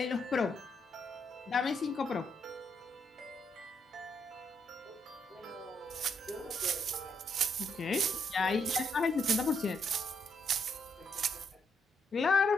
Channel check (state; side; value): normal; both; correlation 0.76